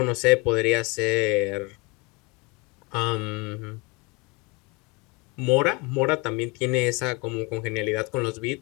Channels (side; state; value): right; quieter; 27.5 dB